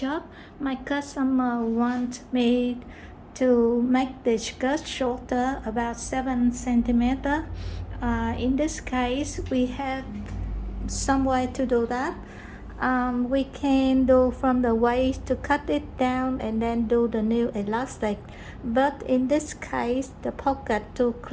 My customer wants me to make the skirt shorter, about 7 centimeter. In this case, we have some way to do that. We can do from the waist to cut it down and then do the new elastic. But in this case, the pocket too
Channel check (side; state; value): both; identical; correlation 1.00